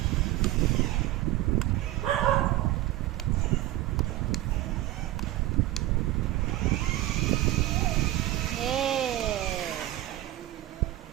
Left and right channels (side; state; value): left; quieter; 15.8 dB